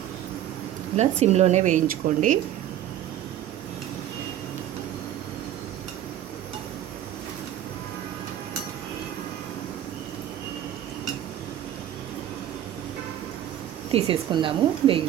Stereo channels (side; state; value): left; quieter; 11.6 dB